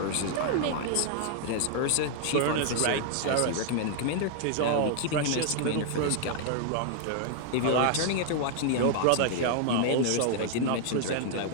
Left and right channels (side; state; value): both; different; correlation 0.00